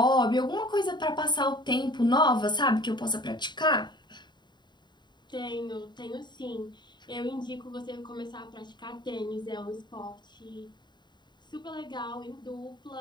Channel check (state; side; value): late; right; 0.22 ms